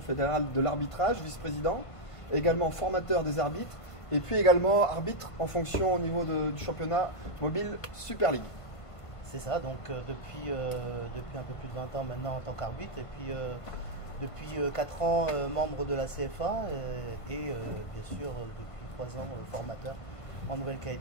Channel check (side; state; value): right; late; 1.5 ms